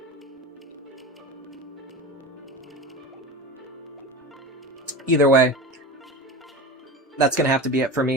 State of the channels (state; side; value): normal; both; correlation 0.27